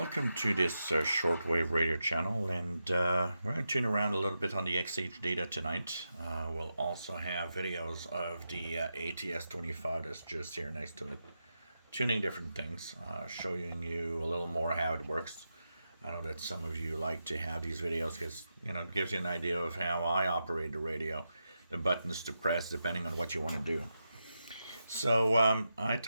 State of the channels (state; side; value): inverted; both; correlation -0.88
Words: to this shortwave radio channel, and we're going to tune around a little bit on the XHDATA tonight. We'll also have videos of the ATS-25 that's just here next to it, tuning different things, showing you a little more how it works. I know that some of you like to have these videos because, it gives you an idea of how I operate the radio, the buttons to press depending on what you want to do. So I